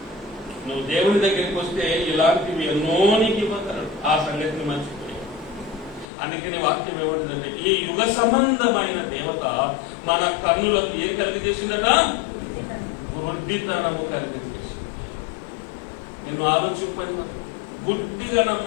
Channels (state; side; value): drops out; right; at 6.1 s